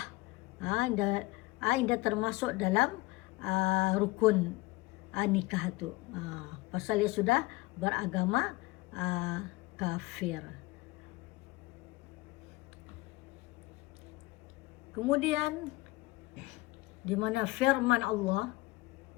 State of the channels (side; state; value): right; quieter; 21.3 dB